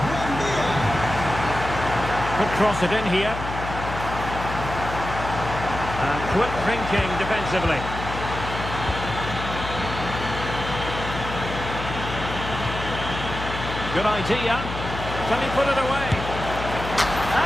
Could cross it in here. And quick thinking defensively. Good idea. Can he put it away?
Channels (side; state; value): left; noise; hum, 7 dB below the sound